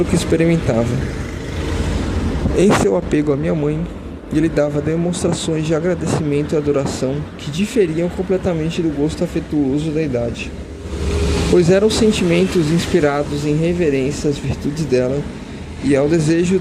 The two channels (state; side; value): identical; both; correlation 1.00